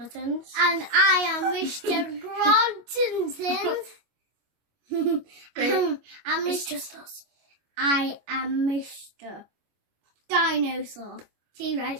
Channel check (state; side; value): late; left; 25 ms